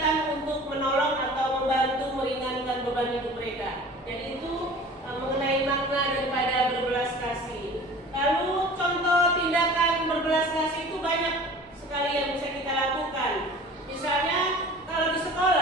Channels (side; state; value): both; normal; correlation 0.43